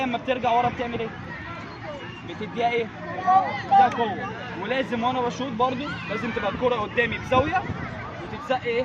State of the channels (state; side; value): identical; both; correlation 1.00